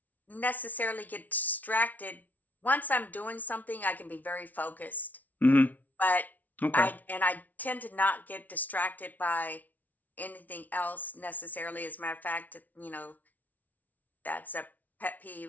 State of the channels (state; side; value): late; right; 0.076 ms